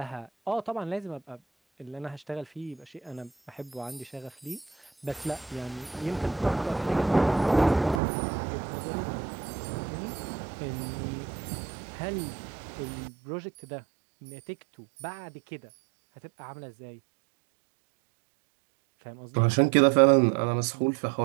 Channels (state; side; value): drops out; left; at 8.0 s